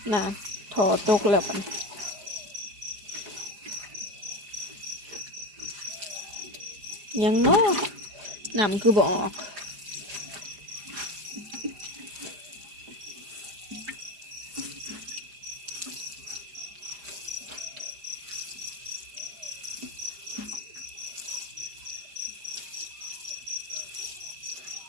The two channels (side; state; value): left; late; 5.0 ms